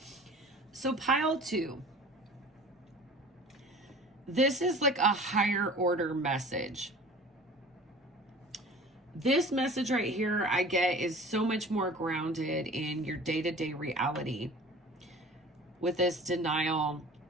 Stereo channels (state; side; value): normal; both; correlation 0.43